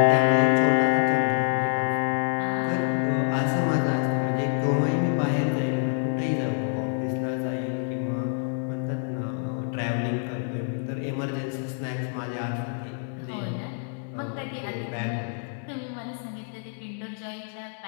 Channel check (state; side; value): silent; right; digital silence